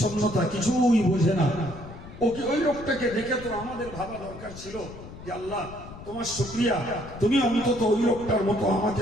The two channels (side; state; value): left; noise; rumble, 15 dB below the sound